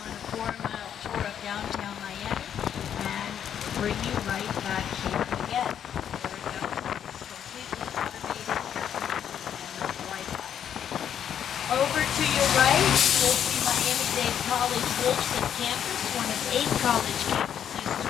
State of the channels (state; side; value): quieter; right; 9.1 dB